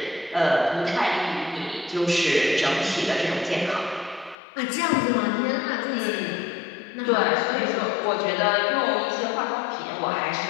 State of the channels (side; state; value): right; drops out; at 4.4 s